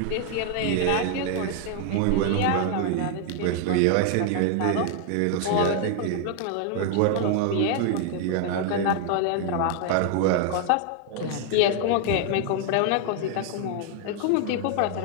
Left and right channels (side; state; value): both; different; correlation 0.00